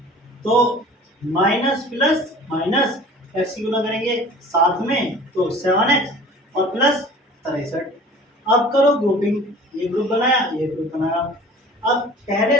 तो माइनस प्लस माइनस एक्स की गुणा करेंगे साथ में, तो 7x और प्लस 63। अब करो ग्रुपिंग, ये ग्रुप बनाया, ये ग्रुप बनाया। अब पहले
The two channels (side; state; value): both; normal; correlation 0.44